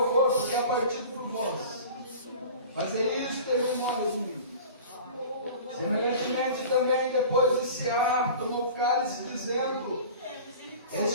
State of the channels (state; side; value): inverted; both; correlation -0.39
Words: corpo que é partido por vós. Fazei isto em memória de mim. Semelhantemente também, depois de cear, tomou o cálice, dizendo: